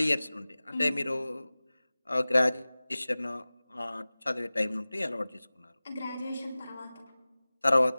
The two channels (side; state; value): both; inverted; correlation -0.98